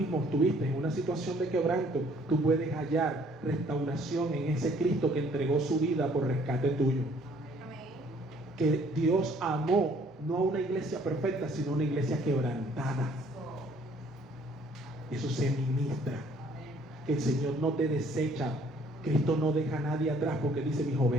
estuviste en una situación de quebranto, tú puedes hallar restauración en ese Cristo que entregó su vida por rescate tuyo. Amén. Que Dios amó no a una iglesia perfecta, sino a una iglesia quebrantada. Eso se ministra. Que el Señor no te desecha. Cristo no deja a nadie atrás porque dice: mis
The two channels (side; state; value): both; normal; correlation 0.60